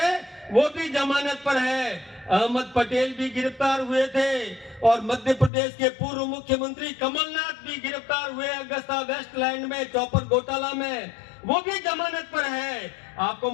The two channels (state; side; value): drops out; right; at 5.5 s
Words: वो भी जमानत पर है, अहमद पटेल भी गिरफ्तार हुए थे, और मध्य प्रदेश के पूर्व मुख्यमंत्री कमलनाथ भी गिरफ्तार हुए अगस्ता वेस्टलैंड में चौपर घोटाला में, वो भी जमानत पर है। आपको